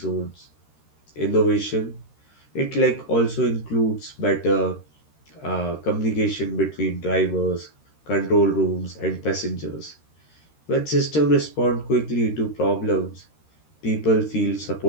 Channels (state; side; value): late; right; 13 ms